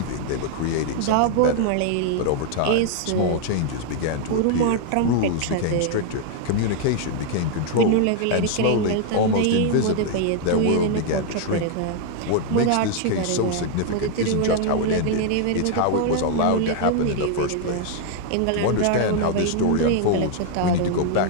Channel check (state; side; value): different; both; correlation 0.00